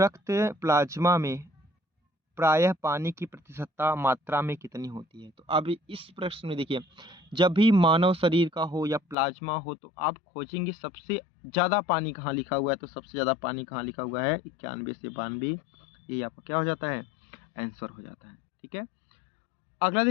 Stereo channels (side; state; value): right; drops out; at 9.2 s